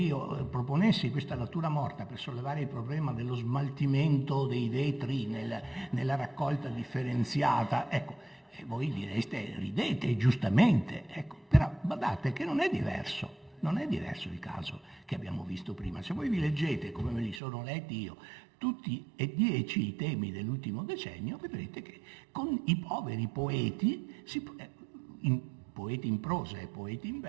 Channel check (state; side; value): drops out; left; at 17.4 s